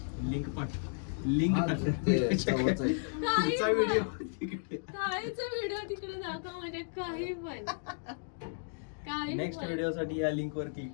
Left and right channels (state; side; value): silent; right; digital silence